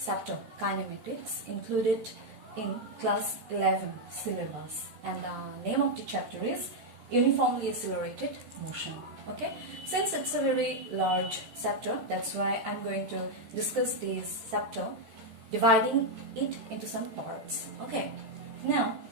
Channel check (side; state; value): left; late; 13 ms